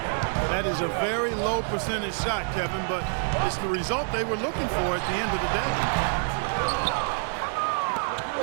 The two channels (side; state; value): left; silent; 60 dB below the other